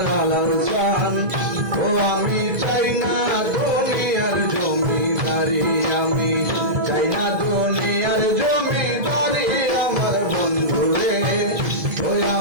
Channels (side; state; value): left; late; 2.0 ms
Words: আলাল চান। ও আমি চাই না দুনিয়ার জমিদারি, আমি চাই না দুনিয়ার জমিদারি আমার বন্ধু রে। ওই